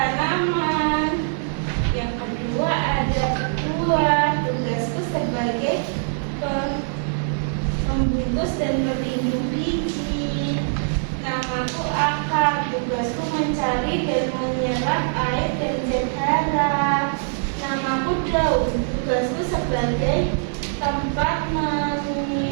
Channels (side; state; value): left; silent; digital silence